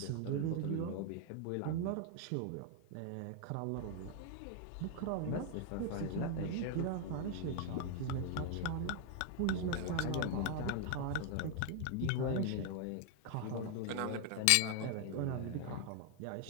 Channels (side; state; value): both; different; correlation 0.00